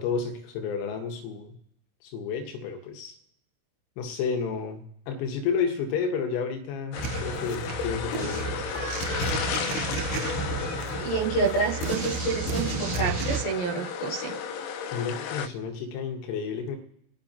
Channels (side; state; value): right; late; 22 ms